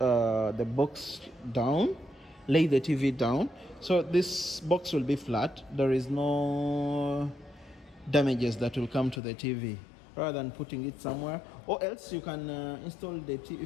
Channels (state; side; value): drops out; right; at 9.2 s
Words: box down, lay the TV down, so this box will be flat. There is no damages that will come to the TV, rather than putting it somewhere. Or else you can install the TV.